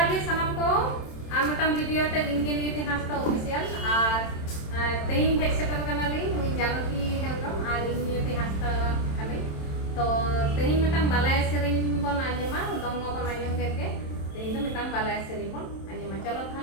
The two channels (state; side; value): late; right; 27 ms